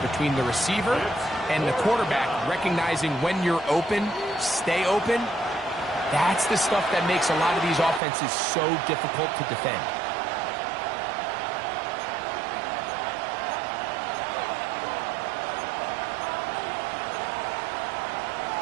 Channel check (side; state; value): left; drops out; at 8.0 s